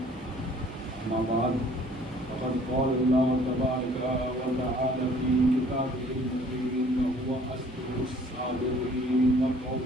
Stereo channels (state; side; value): normal; both; correlation 0.56